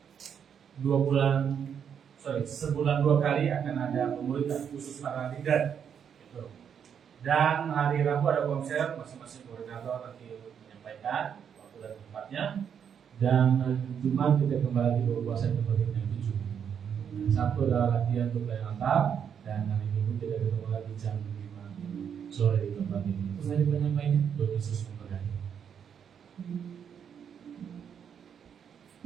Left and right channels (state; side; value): quieter; left; 7.9 dB